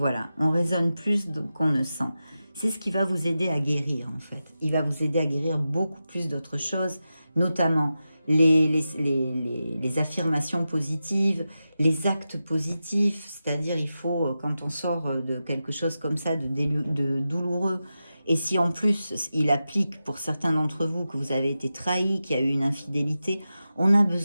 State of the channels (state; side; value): inverted; both; correlation -0.92